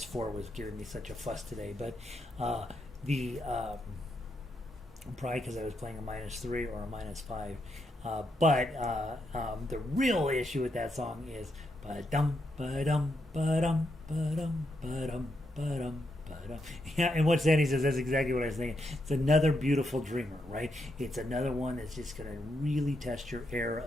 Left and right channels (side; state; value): both; normal; correlation 0.81